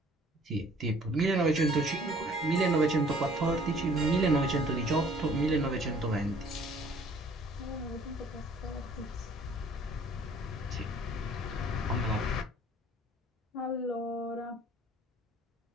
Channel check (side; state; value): both; normal; correlation 0.55